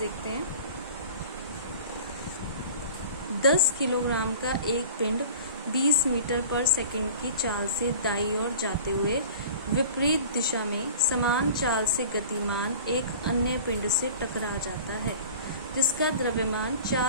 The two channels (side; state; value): both; inverted; correlation -0.41